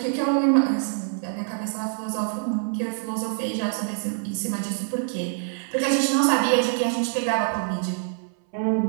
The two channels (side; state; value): left; silent; 59 dB below the other